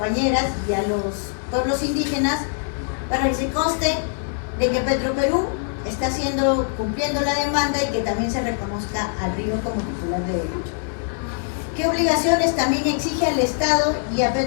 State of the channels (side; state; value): right; silent; digital silence